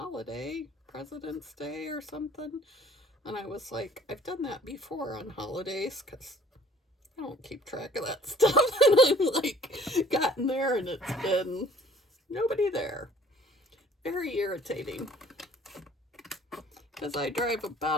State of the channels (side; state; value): both; normal; correlation 0.54